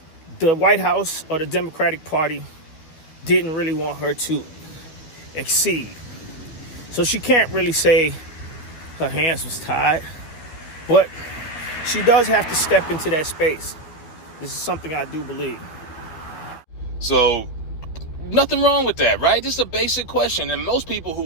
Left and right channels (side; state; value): right; late; 12 ms